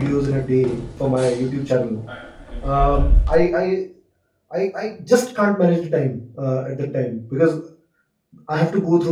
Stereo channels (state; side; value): identical; both; correlation 1.00